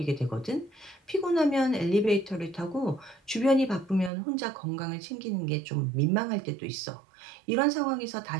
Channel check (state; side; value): drops out; left; at 4.1 s